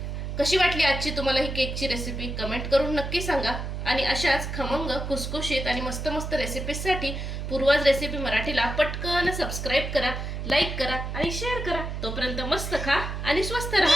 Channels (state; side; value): noise; right; hum, 5 dB below the sound